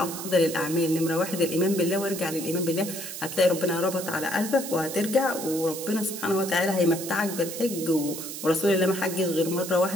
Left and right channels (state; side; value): noise; right; hiss, 8 dB below the sound